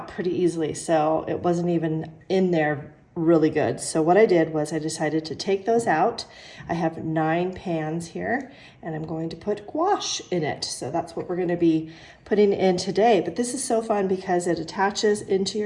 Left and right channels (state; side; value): identical; both; correlation 1.00